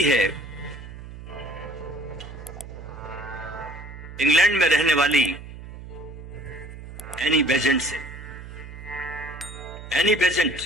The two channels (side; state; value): right; noise; hum, 13 dB below the sound